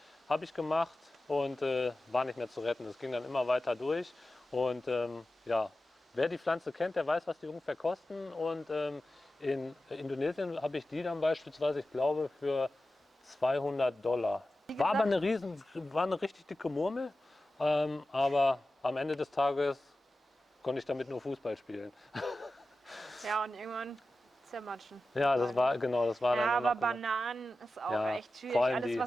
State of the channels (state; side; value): normal; both; correlation 0.94